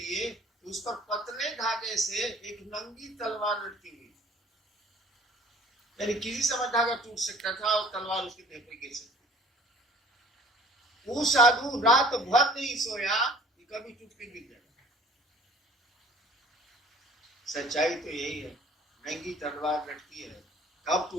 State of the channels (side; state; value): both; normal; correlation 0.51